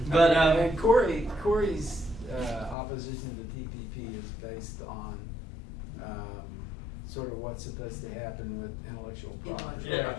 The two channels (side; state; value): right; drops out; at 2.8 s